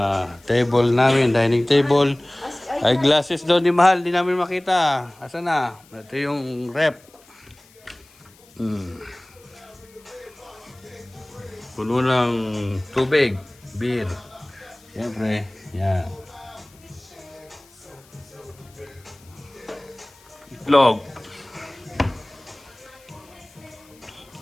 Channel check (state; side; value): noise; left; hiss, 27 dB below the sound